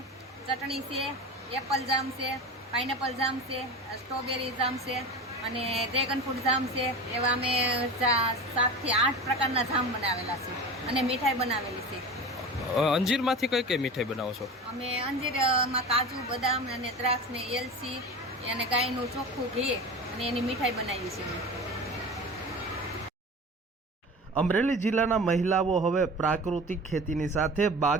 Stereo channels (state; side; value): normal; both; correlation 0.32